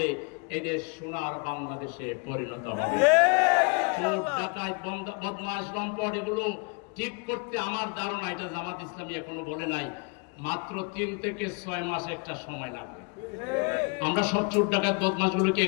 এদের সোনার বাংলাদেশে পরিণত হবে। চোর ডাকাত বদমাশ লম্পট এগুলো ঠিক করতে আমার ধারণা, এটা জামাত ইসলামী এখনো বলে নাই, মাত্র 3 থেকে 6 মাস একটা সময় লাগবে। আমরা সব চোর ডাকাত বদমাশগুলোকে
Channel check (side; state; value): right; quieter; 33.4 dB